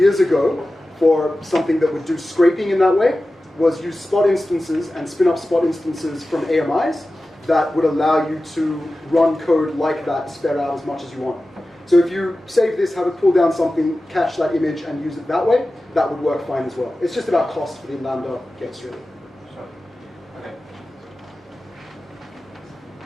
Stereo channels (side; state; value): both; normal; correlation 0.95